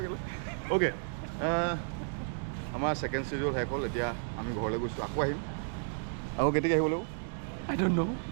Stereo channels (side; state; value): left; silent; digital silence